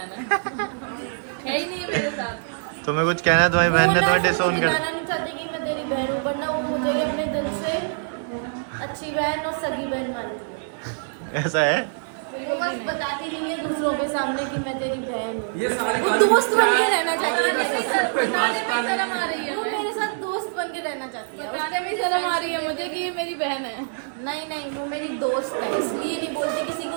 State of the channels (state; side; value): silent; left; digital silence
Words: है ही नहीं मेरे साथ। तुम्हें कुछ कहना है? तुम्हारी बहन ने तुम्हें डिसोन कर दिखाना नहीं चाहती कि मैं तेरी बहन हूँ, वरना वो मुझे अपने दिल से अच्छी बहन और सगी बहन मानती है। ऐसा है? वो बस बताती नहीं है दूसरों के सामने कि मैं तेरी बहन हूँ। वो दोस्त बन के रहना चाहती है मेरे साथ। शर्म आ रही है, वो मेरे साथ दोस्त बन के रहना चाहती है। बताने में शर्म आ रही है मुझे कि ये मेरी बहन है। नहीं नहीं, वो मेरी दोस्त है, इसलिए नहीं बोलती किसी